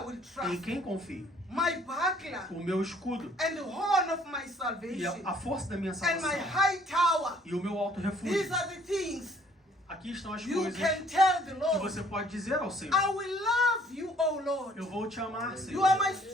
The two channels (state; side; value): normal; both; correlation 0.60